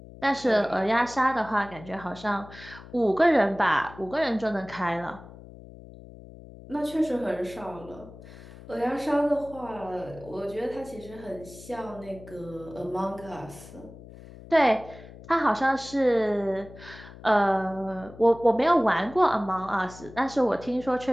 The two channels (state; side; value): noise; left; hum, 18 dB below the sound